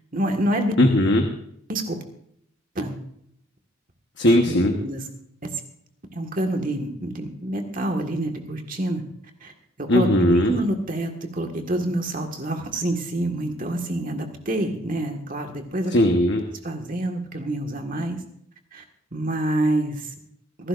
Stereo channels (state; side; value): normal; both; correlation 0.65